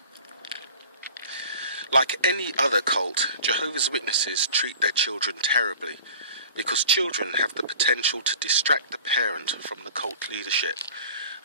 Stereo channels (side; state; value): both; inverted; correlation -0.43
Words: Like any other cult, Jehovah's Witnesses treat their children terribly, because children have the potential to distract the parent from the cult leadership.